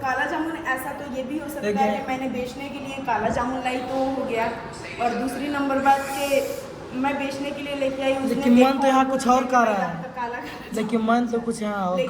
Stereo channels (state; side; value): identical; both; correlation 1.00